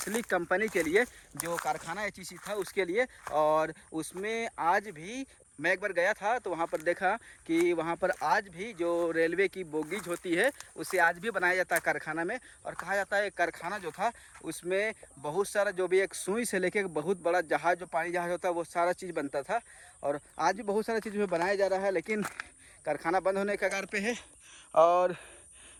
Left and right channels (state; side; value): identical; both; correlation 1.00